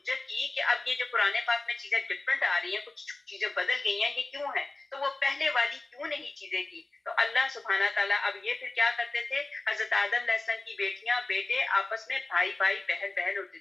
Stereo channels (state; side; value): quieter; right; 3.1 dB